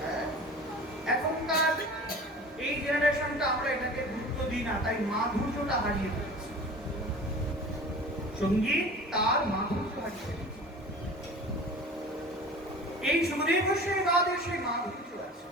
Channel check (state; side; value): normal; both; correlation 0.40